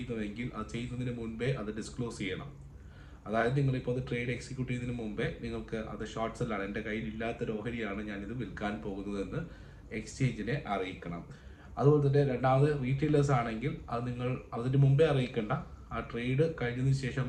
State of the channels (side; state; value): both; identical; correlation 1.00